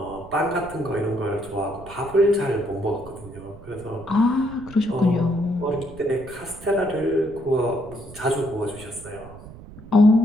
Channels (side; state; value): right; noise; rumble, 17 dB below the sound